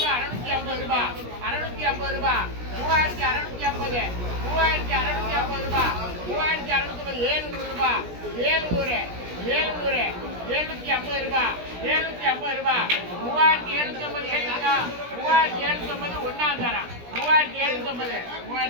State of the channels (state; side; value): late; left; 17 ms